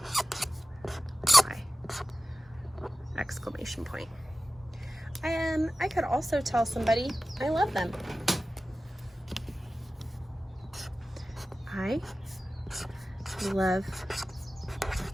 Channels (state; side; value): normal; both; correlation 0.95